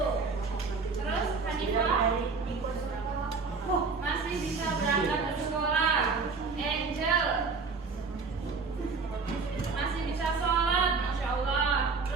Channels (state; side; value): quieter; left; 4.5 dB